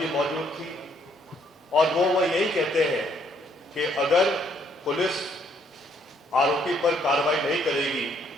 मौजूद थी और वो यही कहते हैं कि अगर पुलिस आरोपी पर कार्रवाई नहीं करेगी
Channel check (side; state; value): both; normal; correlation 0.68